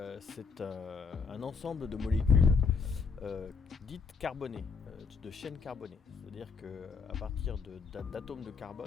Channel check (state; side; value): quieter; right; 5.2 dB